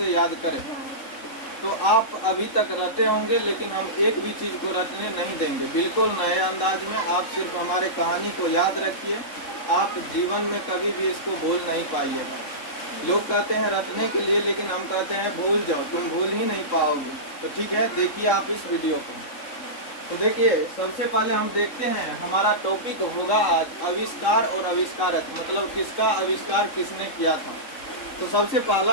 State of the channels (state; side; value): late; right; 3.6 ms